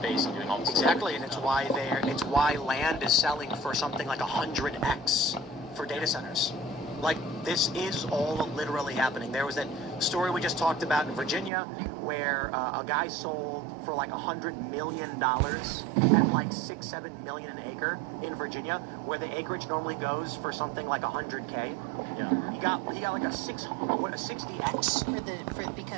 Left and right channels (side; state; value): left; drops out; at 11.5 s